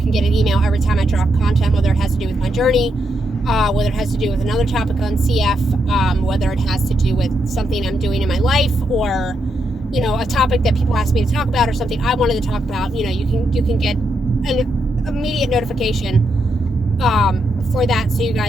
get an email every time I drop content, whether it has to do with my journey, whether it has to do with another topic on CF, whether it has to do with something I'm doing in my life, or a topic that people ask me to talk about, or something I wanted to talk about. You can get an immediate notification for that, so you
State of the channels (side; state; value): both; normal; correlation 0.81